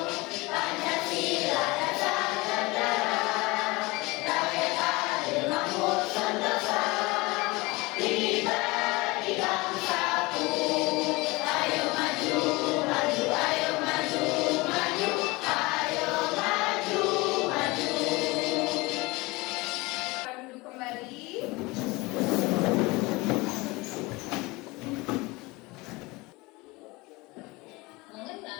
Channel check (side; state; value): right; quieter; 23.4 dB